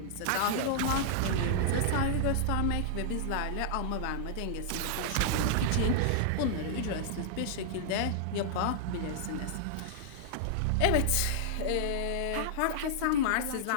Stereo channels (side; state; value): both; different; correlation -0.01